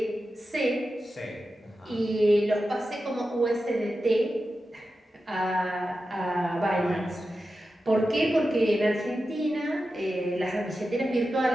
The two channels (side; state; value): both; normal; correlation 0.92